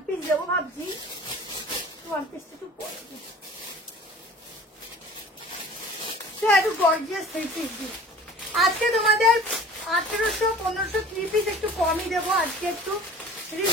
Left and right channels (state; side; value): normal; both; correlation 0.44